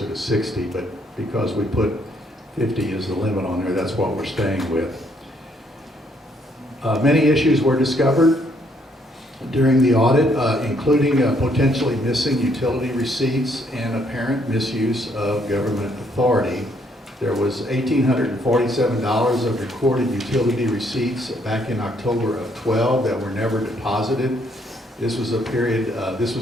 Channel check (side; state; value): both; normal; correlation 0.69